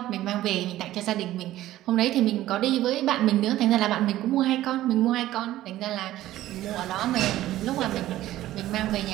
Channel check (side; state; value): left; quieter; 14.6 dB